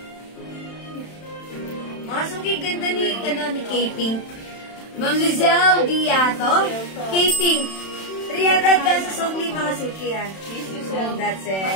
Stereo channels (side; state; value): right; late; 31 ms